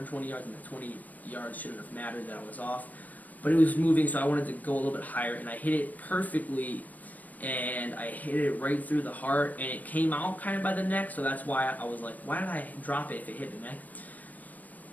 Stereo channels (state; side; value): late; right; 0.079 ms